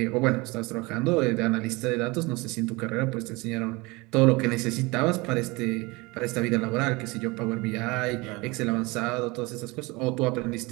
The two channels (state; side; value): quieter; left; 24.2 dB